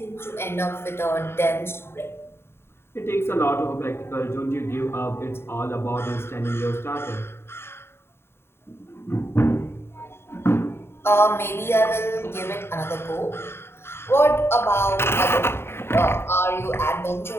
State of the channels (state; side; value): late; right; 0.12 ms